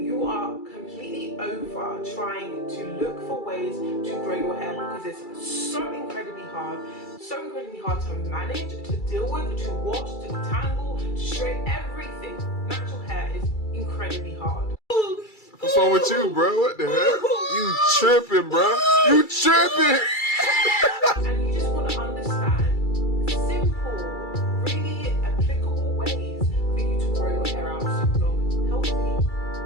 you are completely over trying to look for ways to grow your hair, because it's so incredibly hard to manage, to deal with, to wash, to detangle, to straighten everything. Natural hair is incredibly hard. What's wrong with you, bro? What the heck? You tripping, bro? You tripping? And you just want to understand simple, really applicable ways for you to grow your hair out super long, healthy, and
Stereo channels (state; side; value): late; right; 2.3 ms